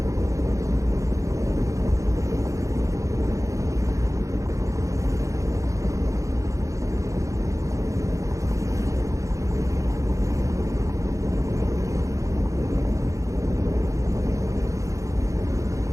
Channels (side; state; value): left; late; 0.15 ms